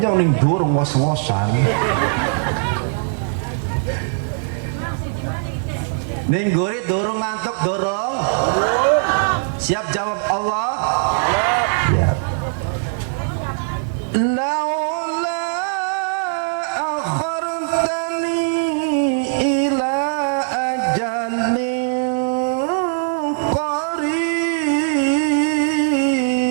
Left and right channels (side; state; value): left; silent; digital silence